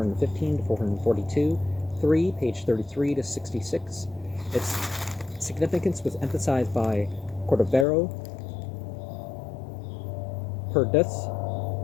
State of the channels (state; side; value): drops out; right; at 7.9 s